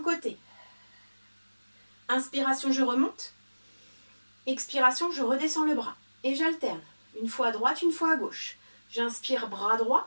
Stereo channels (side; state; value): both; inverted; correlation -1.00